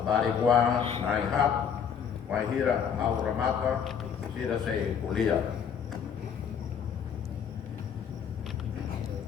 bariguan, na inhat, wahira, ao ramapa, sira se kulia.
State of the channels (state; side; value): quieter; right; 7.6 dB